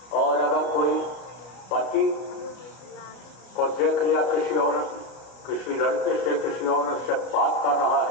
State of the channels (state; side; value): late; right; 33 ms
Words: और अगर कोई पति को देख लिया किसी औरत, किसी लड़के से, किसी औरत से बात कर रहा